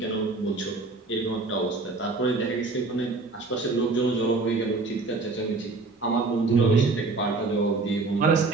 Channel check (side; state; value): left; quieter; 3.6 dB